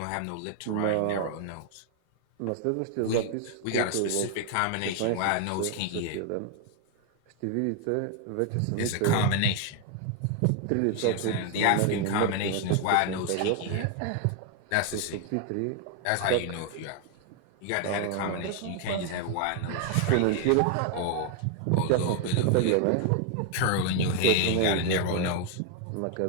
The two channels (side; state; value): both; different; correlation 0.00